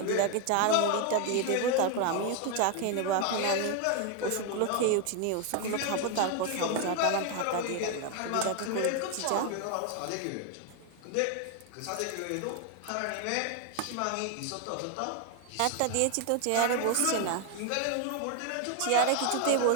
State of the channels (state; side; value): different; both; correlation 0.01